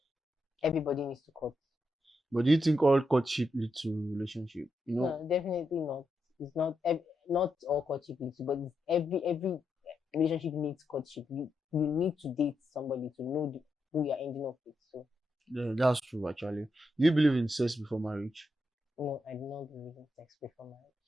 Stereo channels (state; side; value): normal; both; correlation 0.84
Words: Everybody needs to court. But do you think all courtship lead to relationship? No, definitely not. It's not all courtship leads to, but it's every relationship needs courtship. You need to date somebody to know who you're ending up with. So yeah, that's true actually. Do you believe in sex before marriage? no, I do not believe in sex before marriage.